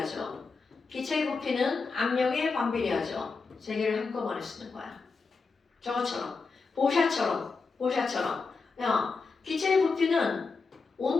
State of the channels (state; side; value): quieter; right; 4.5 dB